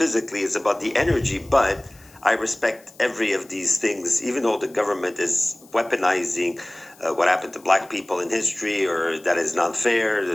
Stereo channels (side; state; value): left; noise; hiss, 26 dB below the sound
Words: It's about the energy. But I respect every of these things, even though the government is weaponizing what happened to black people in history, or that is not fair,